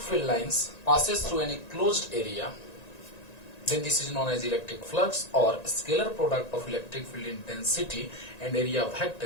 field lines passes through any closed area, then this is known as electric flux, or scalar product of electric field intensity and area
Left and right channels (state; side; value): late; right; 1.9 ms